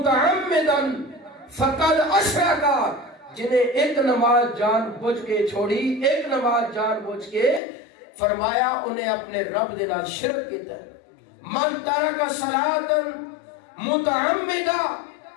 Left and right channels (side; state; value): right; drops out; at 7.6 s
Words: فقد اشرک، جنہیں ایک نماز جان بوجھ کے چھوڑی، ایک نماز جان بوجھ کے، فرمایا انہیں اپنے رب دے نال شرک کیتا ہے۔ من ترک صلاۃ متعمدا،